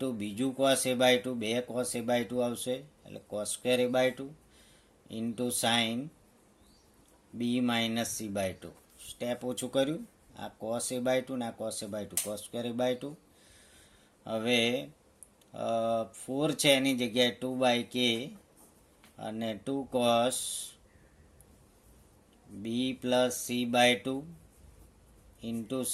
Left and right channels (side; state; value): both; identical; correlation 1.00